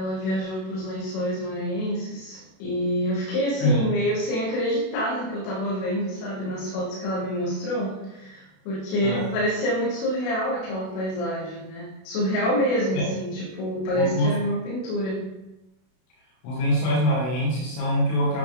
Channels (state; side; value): late; right; 32 ms